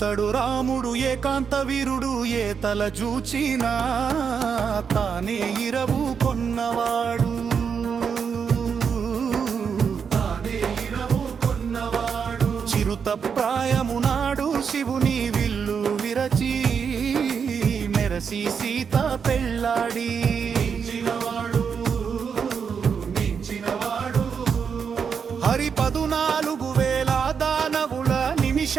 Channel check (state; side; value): quieter; left; 6.5 dB